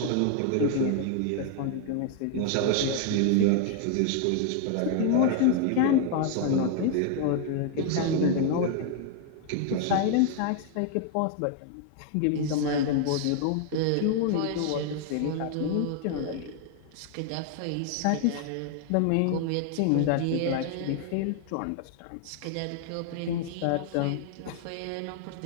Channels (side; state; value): both; different; correlation 0.00